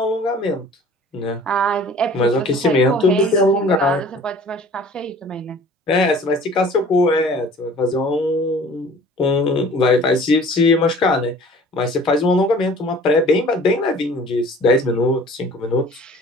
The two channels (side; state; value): both; normal; correlation 0.48